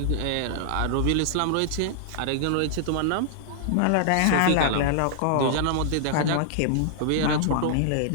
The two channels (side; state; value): both; different; correlation -0.01